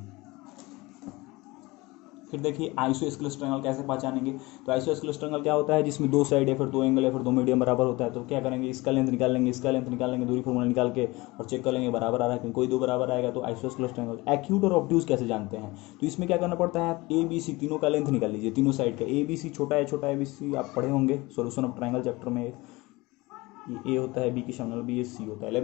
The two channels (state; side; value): quieter; right; 22.2 dB